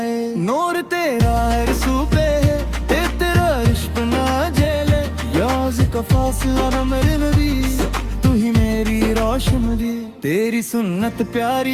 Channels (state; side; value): identical; both; correlation 1.00